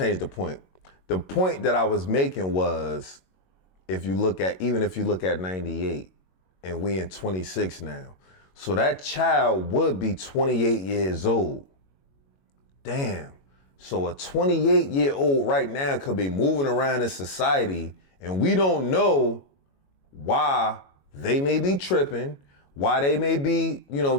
the point. The point that I was making was, if you look at 98, and we in 26 now, so that child would be 28 years old. Damn. So a 28-year-old right now could be moving around in society, and we don't know why they may be tripping, why they may be,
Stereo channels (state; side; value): late; right; 21 ms